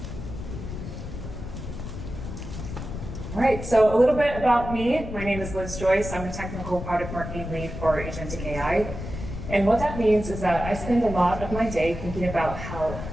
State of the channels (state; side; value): noise; left; rumble, 8 dB below the sound